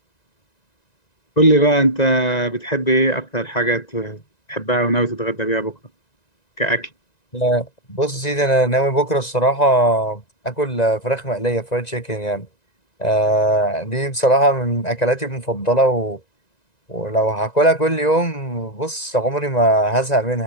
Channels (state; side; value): late; right; 1.9 ms